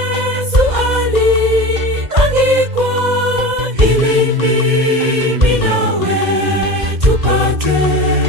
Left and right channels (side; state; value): left; late; 2.0 ms